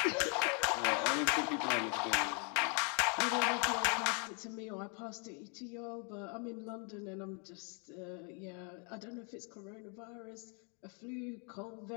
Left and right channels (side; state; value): right; quieter; 37.7 dB